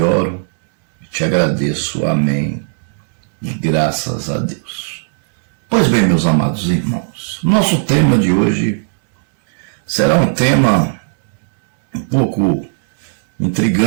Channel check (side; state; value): left; silent; digital silence